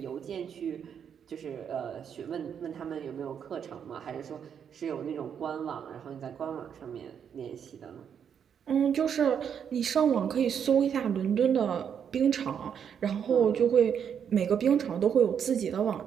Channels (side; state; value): left; quieter; 7.9 dB